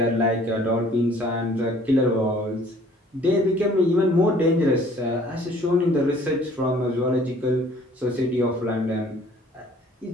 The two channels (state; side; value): normal; both; correlation 0.55